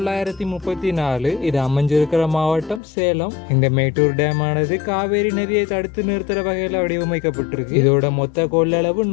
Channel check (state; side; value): drops out; right; at 2.8 s